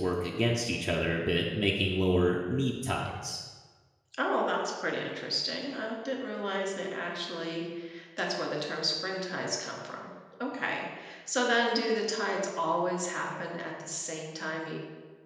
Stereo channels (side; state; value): both; identical; correlation 1.00